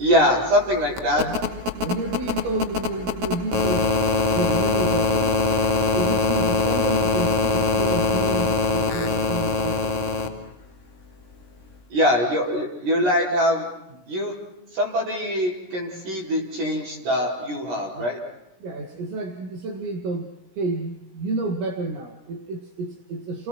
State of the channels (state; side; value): late; left; 17 ms